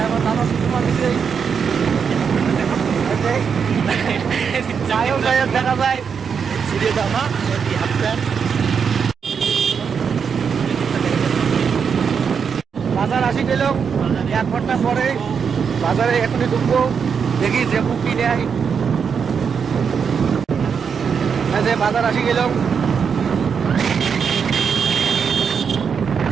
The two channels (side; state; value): left; quieter; 6.5 dB